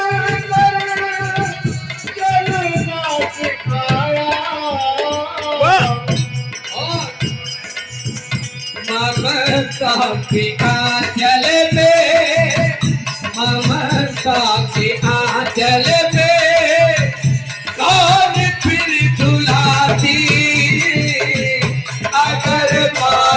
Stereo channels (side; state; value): both; identical; correlation 1.00